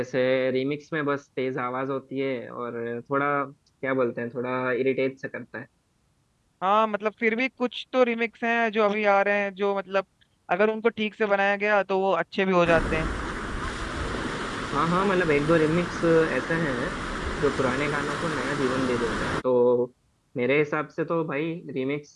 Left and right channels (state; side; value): identical; both; correlation 1.00